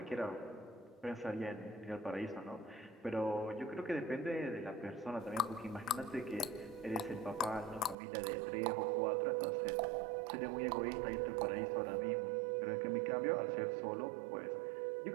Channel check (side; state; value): left; drops out; at 8.0 s